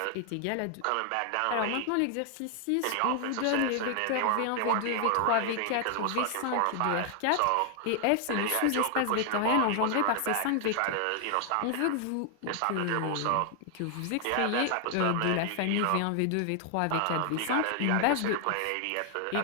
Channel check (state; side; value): different; both; correlation 0.00